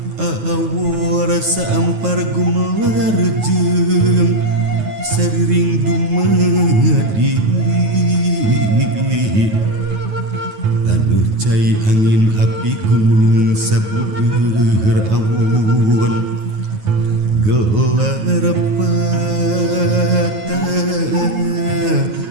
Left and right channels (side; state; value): left; late; 9.3 ms